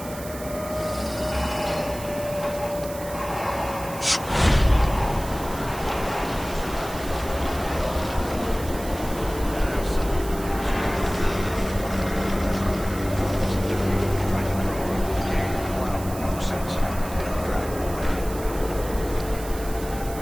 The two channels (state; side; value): noise; right; hiss, 14 dB below the sound